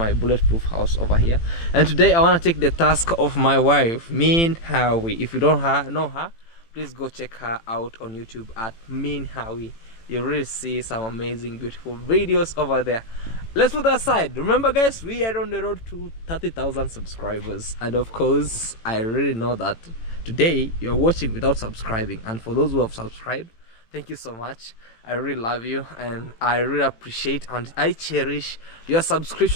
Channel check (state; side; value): late; right; 18 ms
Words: bulletproof house over here, and today I want to take the task of my wife, Mean Howie. If you don't know her, please go check her out on YouTube at Mean Howie. You really see some amazing, beautiful videos over there. Let's put that aside. Remember, guys, we are on the road to 30,000 subscribers, and of course, I really know that today you're watching without subscribing, and for those who have subscribed, thank you so much. I really love you, and I really appreciate and I cherish your